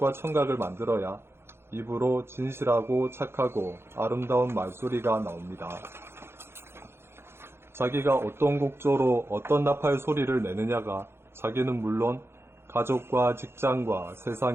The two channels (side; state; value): left; late; 0.12 ms